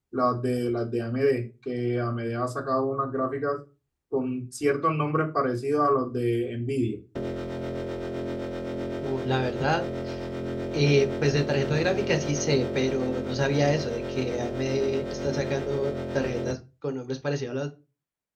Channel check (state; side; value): identical; both; correlation 1.00